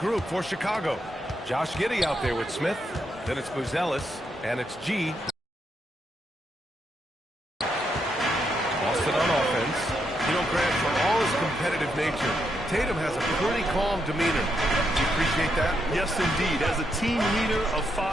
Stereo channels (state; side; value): normal; both; correlation 0.80